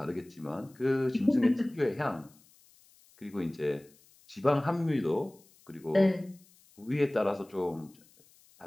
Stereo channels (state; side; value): noise; left; hiss, 29 dB below the sound